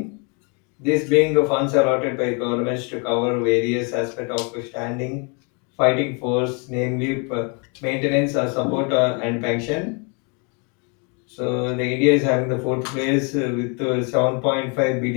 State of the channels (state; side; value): quieter; right; 34.8 dB